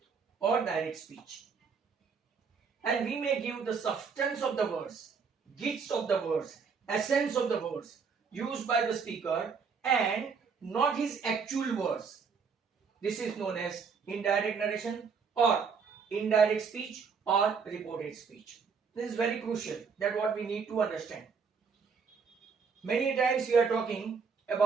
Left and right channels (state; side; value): quieter; left; 5.7 dB